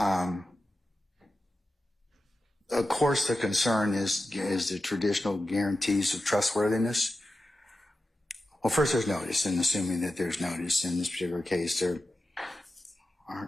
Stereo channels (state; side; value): normal; both; correlation 0.92